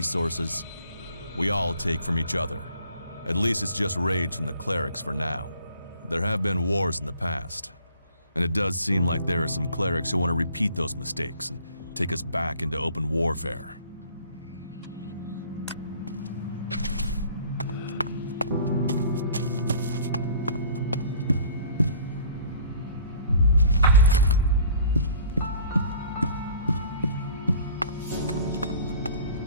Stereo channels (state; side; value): inverted; both; correlation -0.51